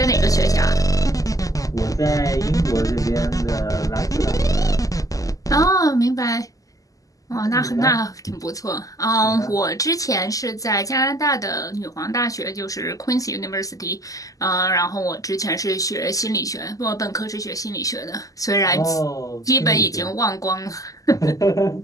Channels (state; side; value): late; right; 0.17 ms